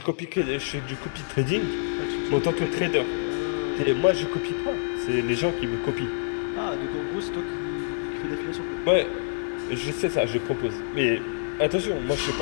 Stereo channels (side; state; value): right; silent; digital silence